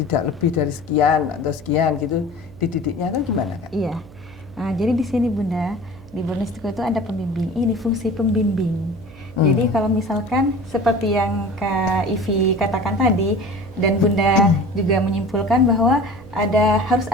lebih dari sekian atau sekian gitu, dididiknya kan gimana kan? Iya. Nah, jadi di sini Bunda, di Borneo itu ada pembimbing. Ini fungsi pembimbing. Jadi kalau misalkan seperti yang Kak Ivi katakan tadi dan Bunda juga menyimpulkan bahwa harus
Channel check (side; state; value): right; noise; hum, 20 dB below the sound